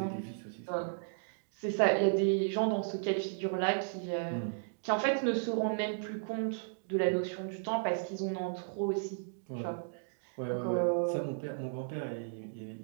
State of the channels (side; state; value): left; silent; digital silence